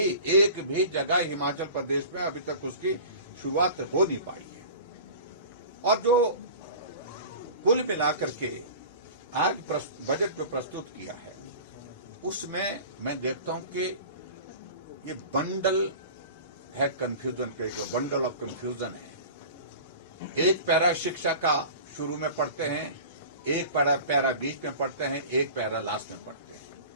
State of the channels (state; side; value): inverted; both; correlation -0.38